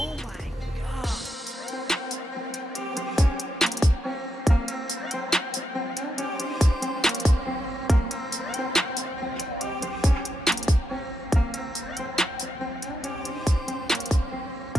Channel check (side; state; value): both; normal; correlation 0.83